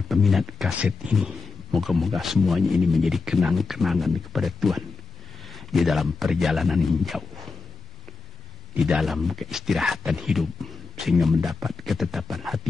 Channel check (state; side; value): quieter; right; 4.3 dB